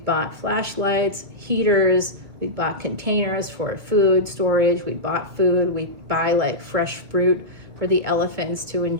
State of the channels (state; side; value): late; left; 2.2 ms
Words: bought flashlights, heaters, we bought containers for food storage. We bought food. We buy like fresh fruit for the elephants to